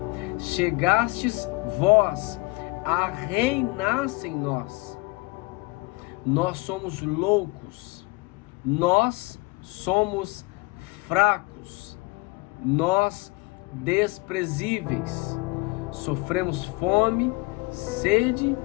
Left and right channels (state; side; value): quieter; right; 24.4 dB